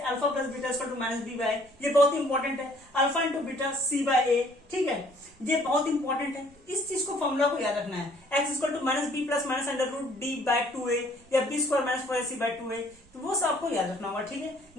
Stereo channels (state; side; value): noise; right; rumble, 28 dB below the sound